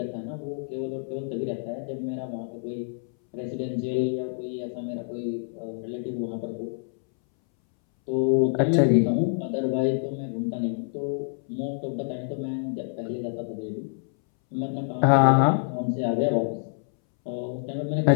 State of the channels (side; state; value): right; silent; 60 dB below the other